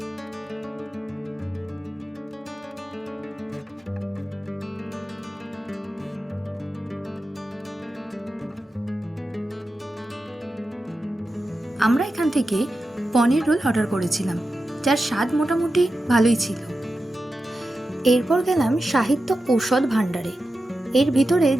আমরা এখান থেকে পনির রোল অর্ডার করেছিলাম, যার স্বাদ মোটামুটি ভালোই ছিল। এরপর গেলাম সাহিত্য ঔষধ ভাণ্ডারে। এর ভিতরে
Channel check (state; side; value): normal; both; correlation 0.91